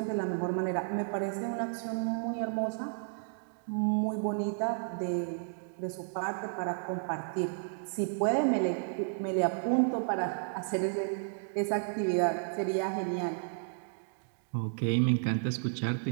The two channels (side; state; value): left; silent; digital silence